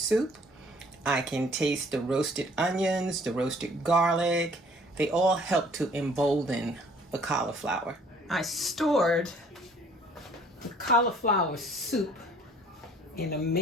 I can taste the roasted onions, the roasted garlic. They all help to embolden the cauliflower. I stored the cauliflower soup in a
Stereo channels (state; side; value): normal; both; correlation 0.56